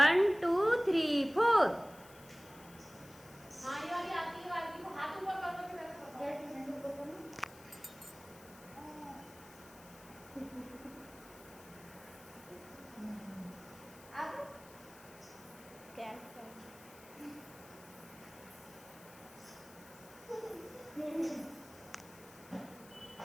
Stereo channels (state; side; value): noise; left; hiss, 20 dB below the sound